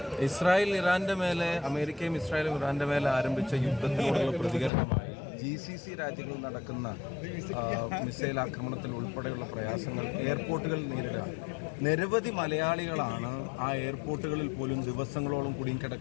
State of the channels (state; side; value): drops out; right; at 4.7 s